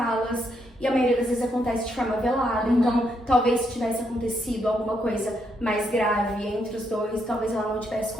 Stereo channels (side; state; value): both; normal; correlation 0.77